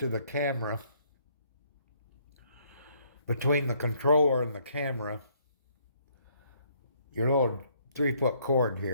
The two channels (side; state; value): both; inverted; correlation -0.67